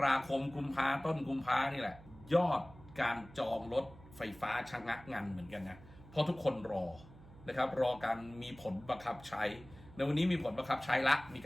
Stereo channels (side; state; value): right; noise; hum, 20 dB below the sound